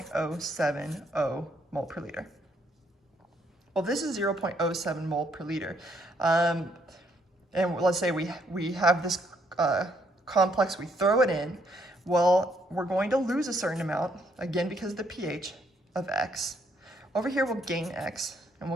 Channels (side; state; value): both; normal; correlation 0.71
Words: mole per liter. Well, this is 0.07 mole per liter. And let's say we have this complex, we throw it in. Well, we're going to lose a certain amount, again, because of the pH of X. Over here, we'll gain X, and